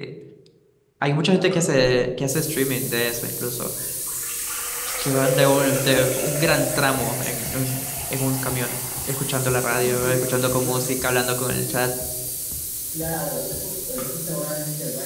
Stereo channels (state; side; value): identical; both; correlation 1.00